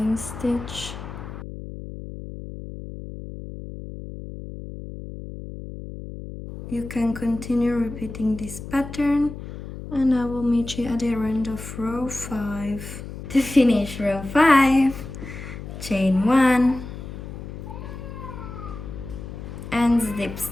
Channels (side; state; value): left; noise; hum, 10 dB below the sound